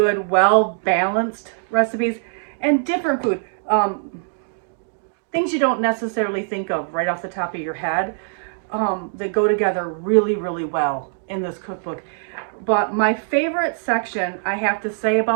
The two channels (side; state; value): left; silent; digital silence